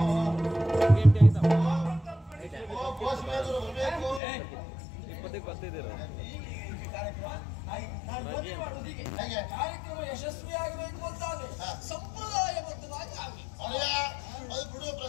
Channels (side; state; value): right; drops out; at 4.2 s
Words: ಕಾರ್ಯಕ್ರಮ ಯಶಸ್ವಿಯಾಗಬೇಕು ಅಂತಾದ್ರೆ ಸಂಪ್ರದಾಯಬದ್ಧವಾಗಿ ಆಗಬೇಕು. ಅದು ಬಿಡುವ